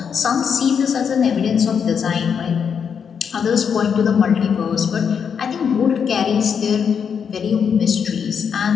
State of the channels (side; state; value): right; quieter; 7.0 dB